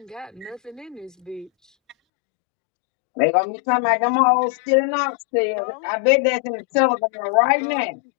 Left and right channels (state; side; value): drops out; right; at 2.0 s